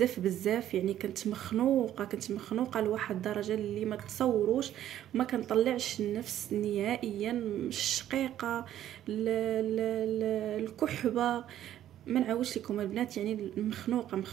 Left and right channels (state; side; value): quieter; left; 11.8 dB